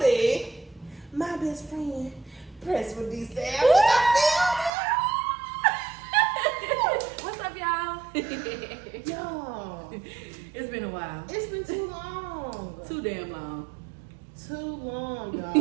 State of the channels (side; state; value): left; drops out; at 4.7 s